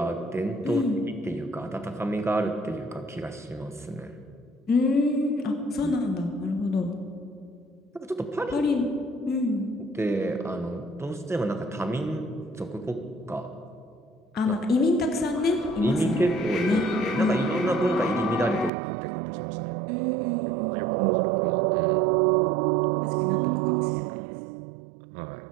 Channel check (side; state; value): left; drops out; at 18.7 s